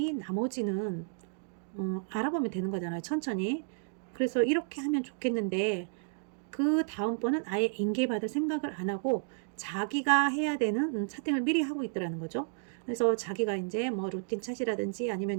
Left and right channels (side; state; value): left; silent; digital silence